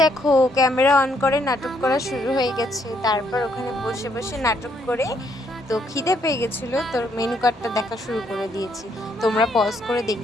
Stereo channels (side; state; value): both; normal; correlation 0.71